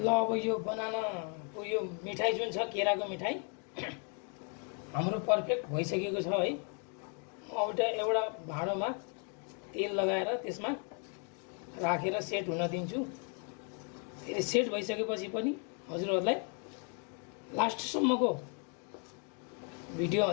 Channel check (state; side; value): quieter; right; 39.8 dB